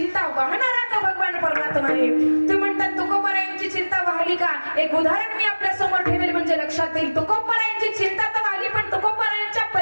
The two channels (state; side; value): inverted; both; correlation -1.00